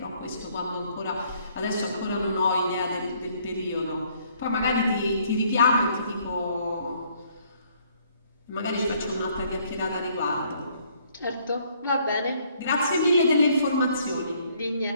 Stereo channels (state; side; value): inverted; both; correlation -0.65